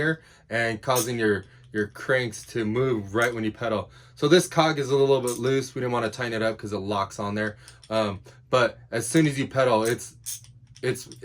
and causing your cranks to move right when you pedal. So this cog is a little bit loose. We didn't want to tighten it up because it locks on there. But as soon as you pedal, it's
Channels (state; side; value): identical; both; correlation 1.00